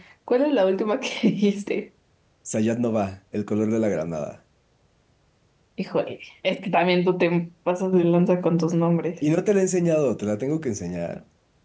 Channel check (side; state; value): both; identical; correlation 1.00